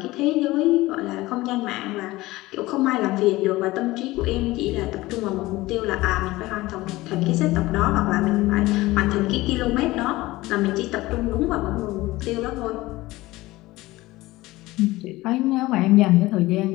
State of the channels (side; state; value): right; quieter; 19.0 dB